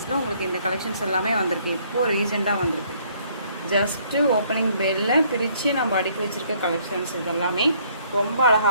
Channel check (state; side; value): inverted; both; correlation -0.64